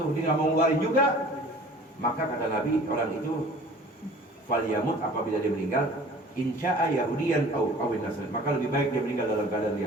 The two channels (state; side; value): normal; both; correlation 0.47